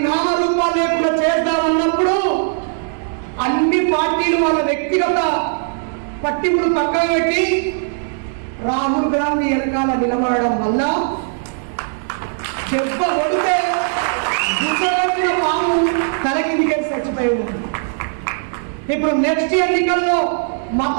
నామరూపాలు లేకుండా చేద్దామన్నప్పుడు అన్ని పార్టీలు వాళ్ళ వ్యక్తిగత పట్టింపులు పక్కన పెట్టి రాహుల్ గాంధీ వెనకాల నిలబడడం వల్ల దెబ్బ కొడితే దుఃఖిన పాము తలకిందికే చచ్చిపోయి ఉంది. ఇప్పుడు నెక్స్ట్ ఎన్నికల్లో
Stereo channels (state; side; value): silent; left; digital silence